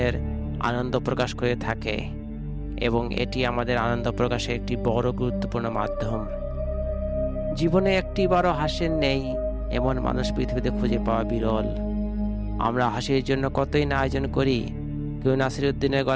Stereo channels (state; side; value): identical; both; correlation 1.00